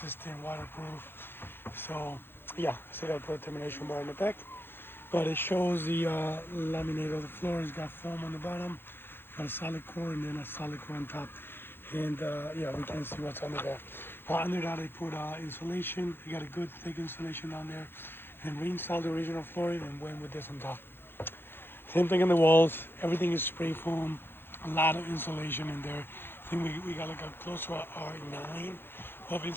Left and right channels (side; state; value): right; late; 0.10 ms